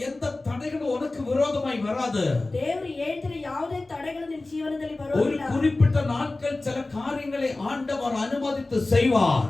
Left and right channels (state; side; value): quieter; right; 3.1 dB